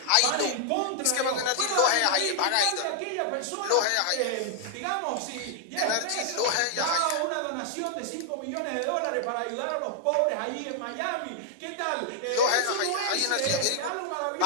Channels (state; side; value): different; both; correlation -0.01